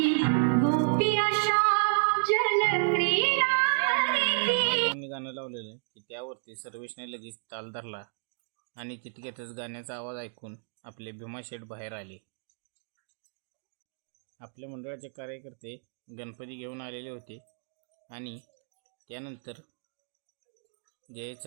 गाणं लावलेलं आहे की त्यावरती सर्वेशने लगेच ताल धरला आणि तितक्यातच गाण्याचा आवाज ऐकून आपले भीमा शेठ बाहेर आले. आपल्या मंडळाचे कार्यकर्ते गणपती घेऊन आलेले होते आणि त्यानंतर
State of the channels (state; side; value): silent; left; digital silence